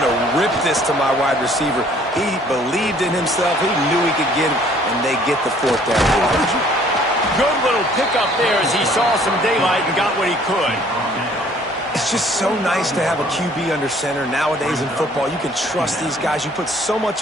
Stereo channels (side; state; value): both; normal; correlation 0.58